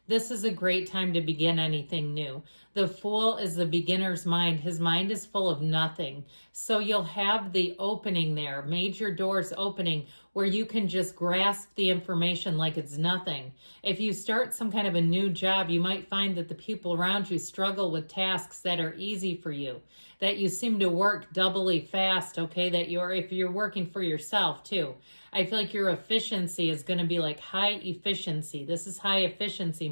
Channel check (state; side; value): inverted; both; correlation -1.00